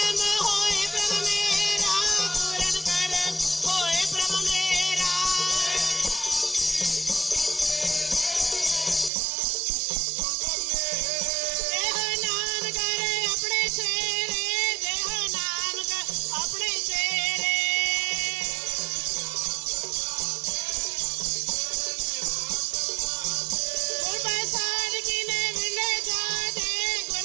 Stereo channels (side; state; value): left; drops out; at 9.1 s